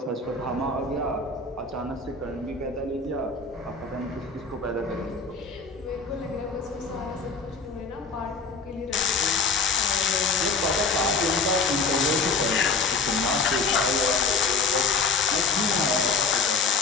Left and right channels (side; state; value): right; quieter; 4.3 dB